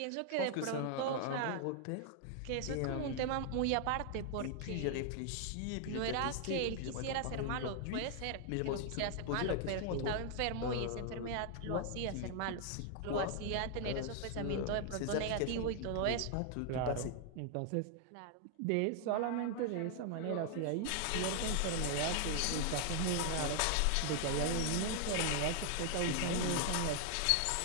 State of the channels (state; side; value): different; both; correlation 0.00